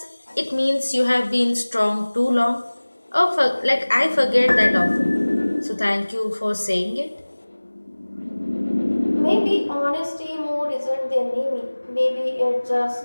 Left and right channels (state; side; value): inverted; both; correlation -1.00